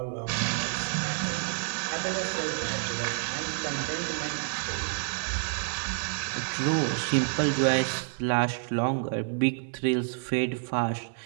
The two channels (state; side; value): silent; left; 56 dB below the other